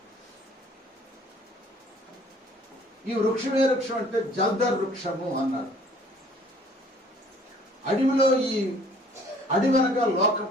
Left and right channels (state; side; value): normal; both; correlation 0.55